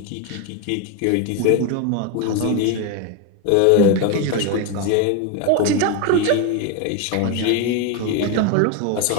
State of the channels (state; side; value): different; both; correlation 0.02